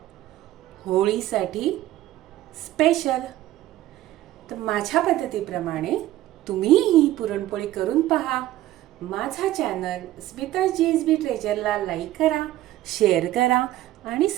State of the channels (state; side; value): quieter; left; 14.7 dB